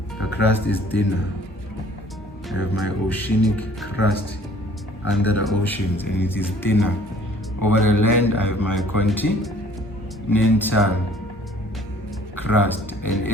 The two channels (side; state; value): both; normal; correlation 0.55